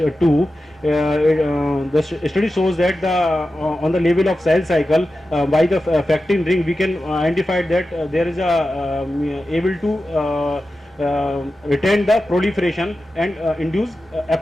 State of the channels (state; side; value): normal; both; correlation 0.92